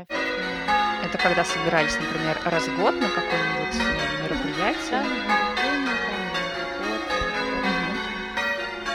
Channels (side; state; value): both; identical; correlation 1.00